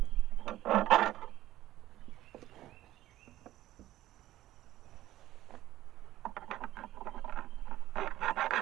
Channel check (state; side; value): quieter; left; 14.6 dB